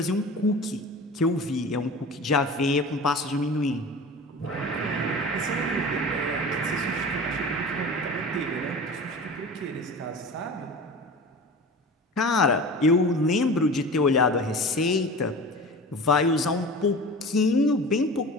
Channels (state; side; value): normal; both; correlation 0.35